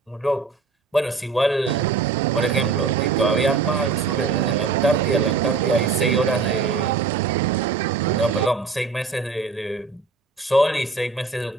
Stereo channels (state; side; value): quieter; left; 4.4 dB